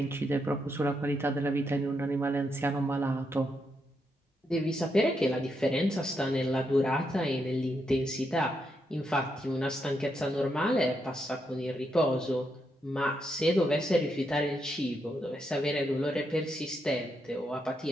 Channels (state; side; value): normal; both; correlation 0.81